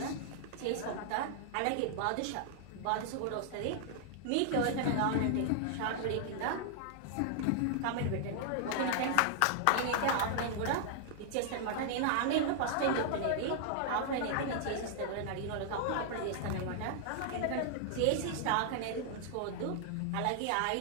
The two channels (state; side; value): different; both; correlation -0.01